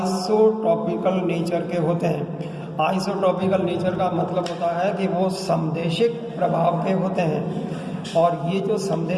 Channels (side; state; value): both; identical; correlation 1.00